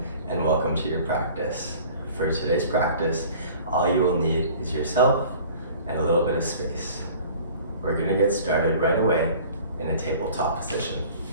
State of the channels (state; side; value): inverted; both; correlation -0.47